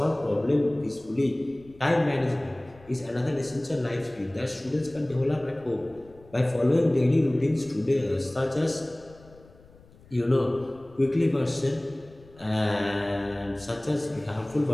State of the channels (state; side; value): noise; left; rumble, 25 dB below the sound